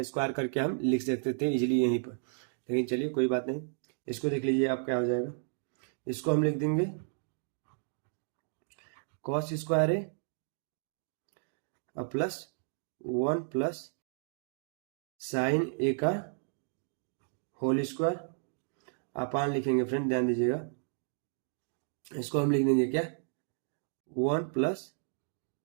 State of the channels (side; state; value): left; silent; digital silence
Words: स्क्वायर करके हम लिख सकते थे इजीली यहीं पर, लेकिन चलिए कोई बात नहीं। इसको देख लीजिए आप क्या हो जाएगा, इसको हम लिख देंगे cos square A plus 1 plus sine ए का होल स्क्वायर, अपान लिखेंगे फ्रेंड, ध्यान दीजिएगा। इसको हम लिख देंगे क्या, 1 plus